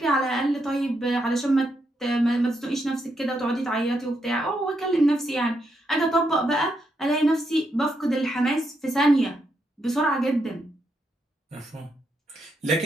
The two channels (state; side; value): normal; both; correlation 0.80